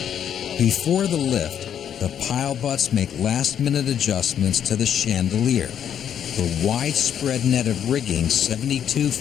Before the lift, the pile butts make last-minute adjustments to the chandelier, the widespread net of rigging 72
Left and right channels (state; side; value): quieter; right; 9.1 dB